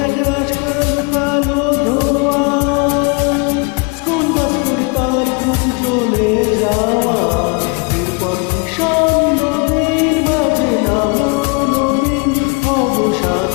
এক রাজকাল কালো ধোয়া স্কুল বাস করে তার খুঁজ চলে যাওয়া এরপর ভীষণ নদীর মাঝে নামো নবীন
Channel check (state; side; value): quieter; right; 30.4 dB